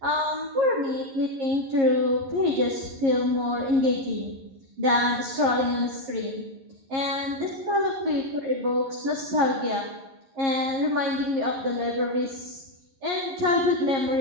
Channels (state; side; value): late; left; 11 ms